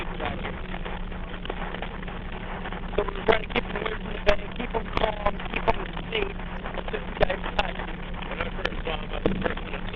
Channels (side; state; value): both; identical; correlation 1.00